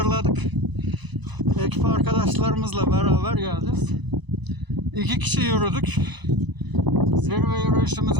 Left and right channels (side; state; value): left; late; 1.0 ms